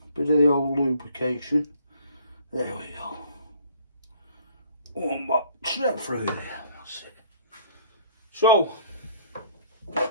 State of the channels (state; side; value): inverted; both; correlation -0.57